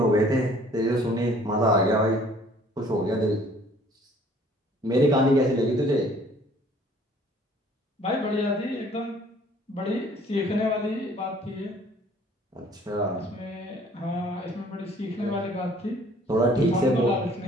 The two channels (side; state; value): both; normal; correlation 0.56